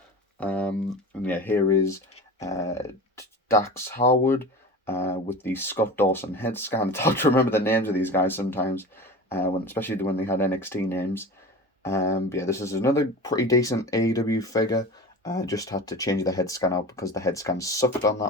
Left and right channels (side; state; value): both; normal; correlation 0.34